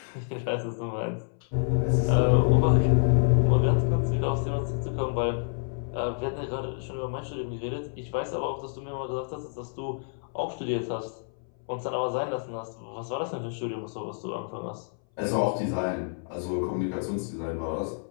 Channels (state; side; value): silent; right; 59 dB below the other